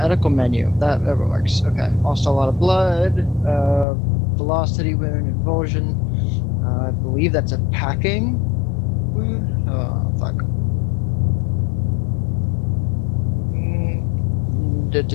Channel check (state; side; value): drops out; right; at 3.9 s